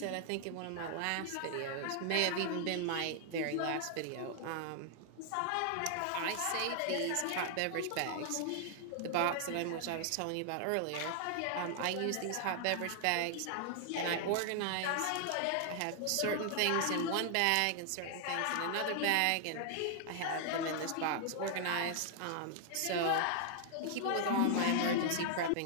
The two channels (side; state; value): both; different; correlation 0.00